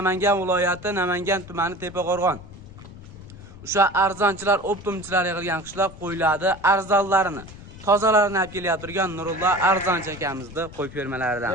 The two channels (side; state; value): left; noise; rumble, 17 dB below the sound